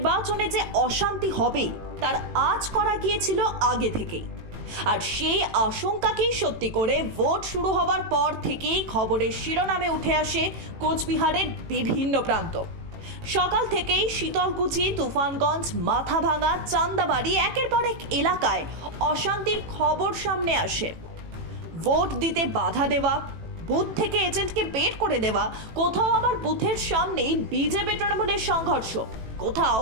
যে অশান্তি হবে তার আঁচ করা গিয়েছিল আগে থেকেই, আর সেই আশঙ্কাকেই সত্যি করে ভোট শুরু হওয়ার পর থেকেই খবরের শিরোনামে উঠে আসে কোচবিহারের বিভিন্ন প্রান্ত। সকাল থেকেই শীতলকুচি, তুফানগঞ্জ, মাথাভাঙা, চান্দাবাড়ি একের পর এক এলাকায় অশান্তির খবর সামনে আসে। ভোট দিতে বাধা দেওয়া, বুথ থেকে এজেন্টকে বের করে দেওয়া, কোথাও আবার বুথের সামনেই বিজেপি তৃণমূলের সংঘর্ষ, কোথাও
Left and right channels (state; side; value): late; left; 18 ms